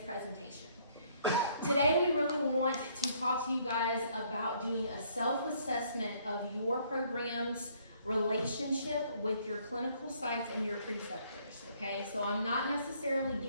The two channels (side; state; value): both; inverted; correlation -0.64